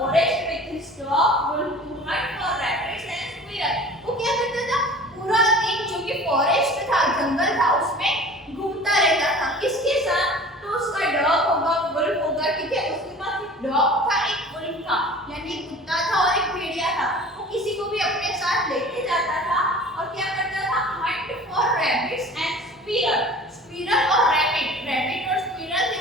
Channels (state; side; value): normal; both; correlation 0.42